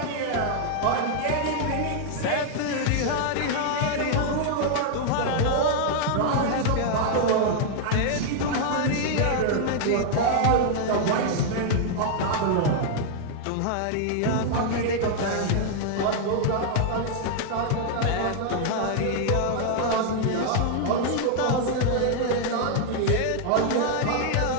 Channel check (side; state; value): both; different; correlation -0.01